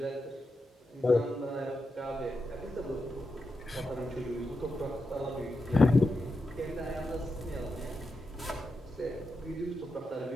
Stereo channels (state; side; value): normal; both; correlation 0.87